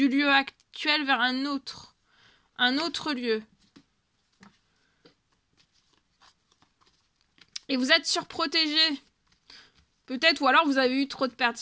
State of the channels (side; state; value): both; identical; correlation 1.00